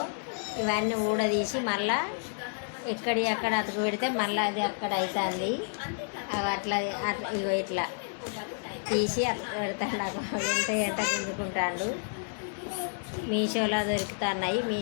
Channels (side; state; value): right; silent; digital silence